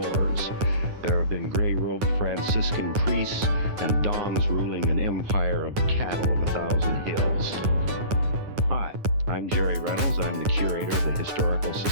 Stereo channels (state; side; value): late; left; 9.6 ms